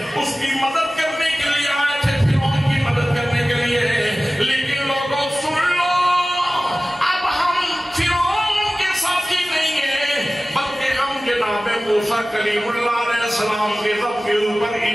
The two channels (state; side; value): normal; both; correlation 0.97